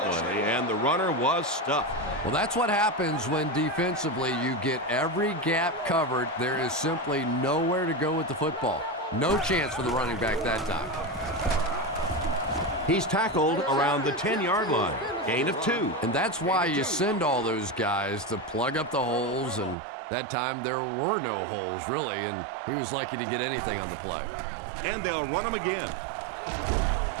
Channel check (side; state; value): left; drops out; at 19.8 s